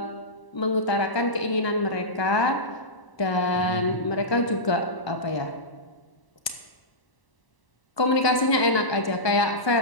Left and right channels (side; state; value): right; late; 1.2 ms